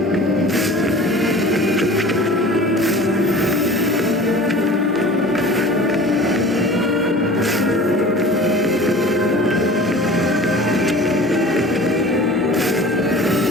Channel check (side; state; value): both; normal; correlation 0.41